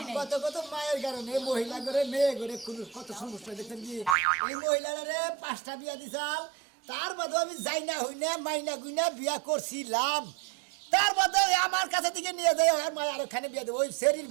কত কত মায়ের কারণে মহিলা করে মেয়ে করে কত সমস্যা দেখছেন কি এই মহিলারা 5টা বিয়া দিছাল তার বাদে আমি যাই না হই না মাইনা গুইনা বিয়া করছিলাম তার বাদে আমার কাছে থেকে নিয়ে যাই আর মায়ের আরেকখানে বিয়া দেবো ওই শরীর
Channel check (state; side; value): drops out; left; at 4.2 s